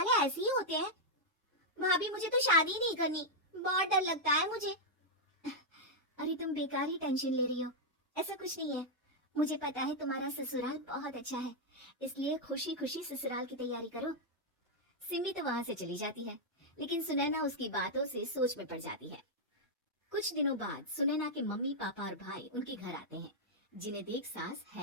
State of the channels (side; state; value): both; normal; correlation -0.03